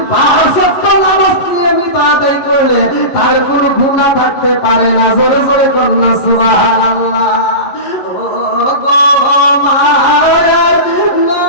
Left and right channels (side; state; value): right; late; 11 ms